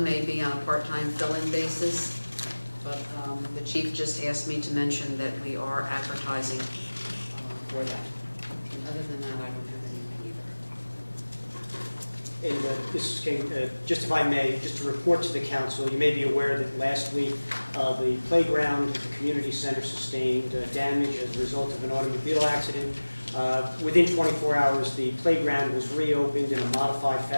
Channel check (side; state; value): both; inverted; correlation -1.00